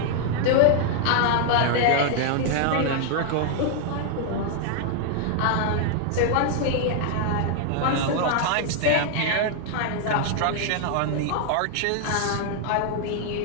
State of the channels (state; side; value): different; both; correlation 0.00